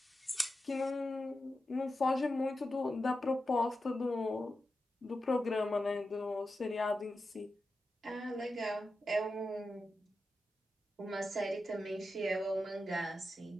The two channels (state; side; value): normal; both; correlation 0.90